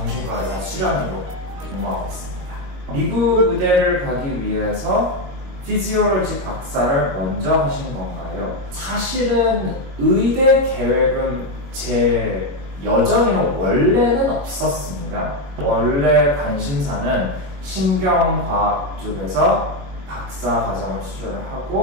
의사 수련의로 근무하고 있습니다. 미국 의대를 가기 위해서 피지올로지 박사를 먼저 하신 건가요? 사실은 의대 계획은 제 여정에는 원래는 없었습니다. 원래 관심사는 신경과학 쪽에서 박사 과정을 수료를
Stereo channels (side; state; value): left; late; 22 ms